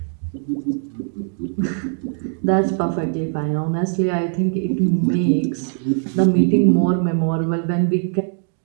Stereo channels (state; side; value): silent; left; 57 dB below the other